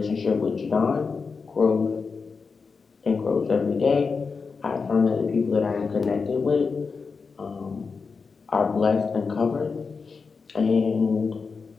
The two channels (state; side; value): quieter; right; 4.9 dB